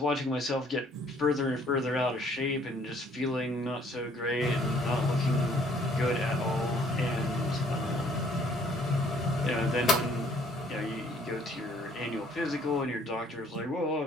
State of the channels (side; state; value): both; normal; correlation 0.61